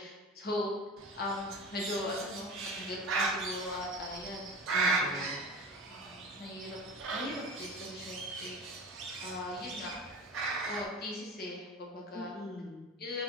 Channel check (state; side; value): normal; both; correlation 0.33